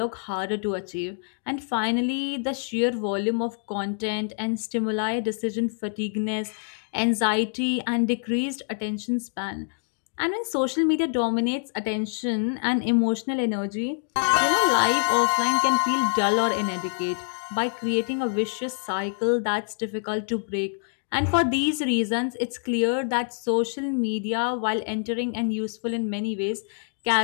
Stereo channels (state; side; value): silent; right; digital silence